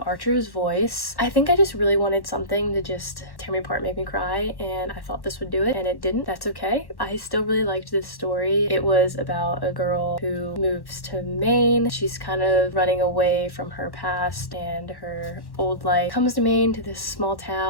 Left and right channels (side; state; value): right; late; 1.1 ms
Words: Archer's Voice. I think I just really wanted something to just tear me apart, make me cry, and I thought this would do it, and it didn't. That's okay. I still really liked this story. It was about a girl who moves to Maine. She's kind of running away from her past and her old life. Comes to Maine, to this small